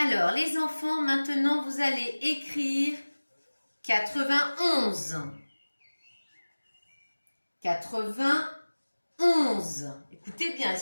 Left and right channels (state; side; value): inverted; both; correlation -1.00